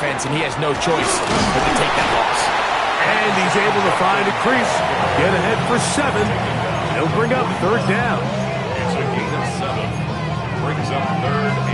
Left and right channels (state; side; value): identical; both; correlation 1.00